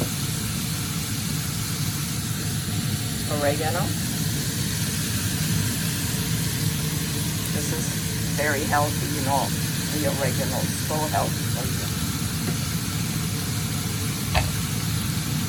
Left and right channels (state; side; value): identical; both; correlation 1.00